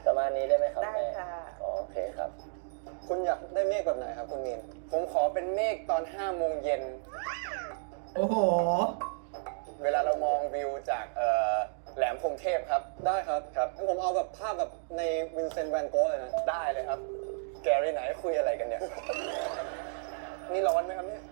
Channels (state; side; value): silent; left; digital silence